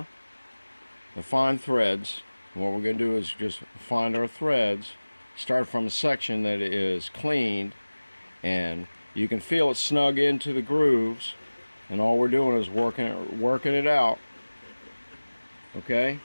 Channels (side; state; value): both; inverted; correlation -1.00